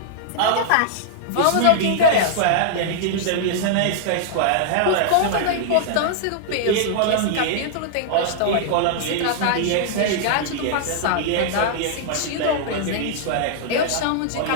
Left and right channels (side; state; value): both; different; correlation -0.01